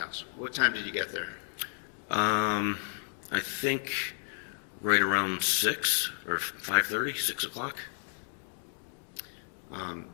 What time did you get there? I think right around 6 or 5:30, 6 o'clock.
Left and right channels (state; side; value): silent; right; digital silence